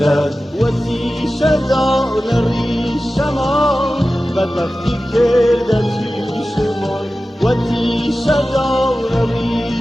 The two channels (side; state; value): both; normal; correlation 0.95